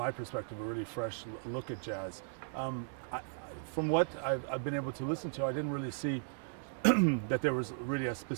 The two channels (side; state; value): left; silent; digital silence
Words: perspective, a really fresh look at jazz. From what I've been able to listen to, I didn't really see that there was really a